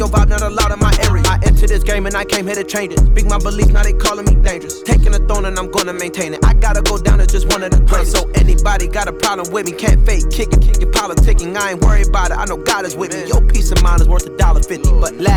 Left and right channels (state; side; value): identical; both; correlation 1.00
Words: vibe, not allowed in my area. I entered this game and I came here to change it. Speak my beliefs, now they calling me dangerous. Taking a throne and I'm gonna maintain it. I gotta go down as just one of the greatest. So anybody got a problem with me, can't fake kick it, your politicking. I ain't worried about it, I know God is with me. Your peace of mind is worth $1.50. But